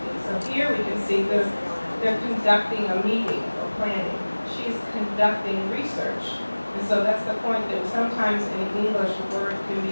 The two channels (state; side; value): inverted; both; correlation -1.00